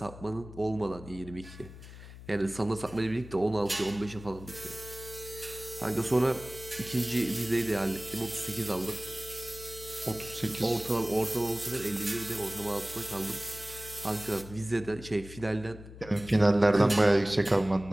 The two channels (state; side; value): noise; left; hum, 15 dB below the sound